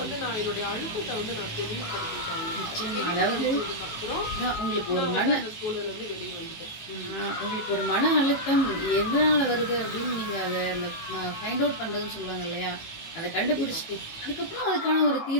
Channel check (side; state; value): right; late; 18 ms